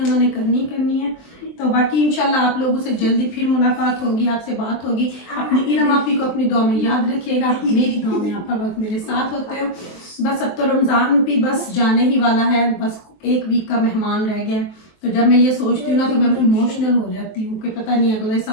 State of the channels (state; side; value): late; right; 23 ms